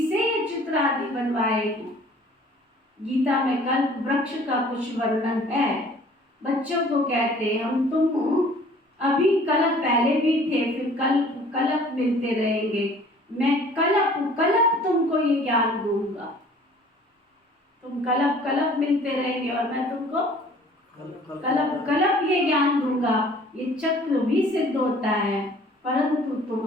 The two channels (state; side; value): normal; both; correlation 0.52